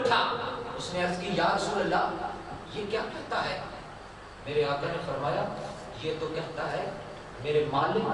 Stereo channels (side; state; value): both; identical; correlation 1.00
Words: اس نے عرض کی یا رسول اللہ یہ کیا کہتا ہے؟ میرے آقا نے فرمایا یہ تو کہتا ہے میرے مالک